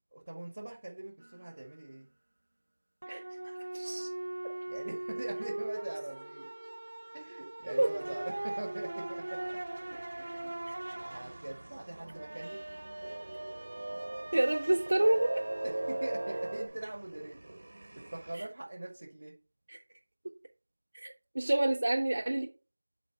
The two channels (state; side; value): inverted; both; correlation -1.00